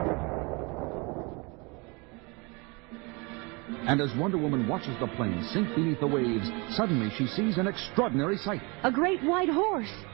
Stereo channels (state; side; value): quieter; left; 28.7 dB